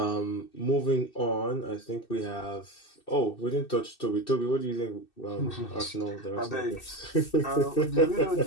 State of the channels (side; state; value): right; late; 2.6 ms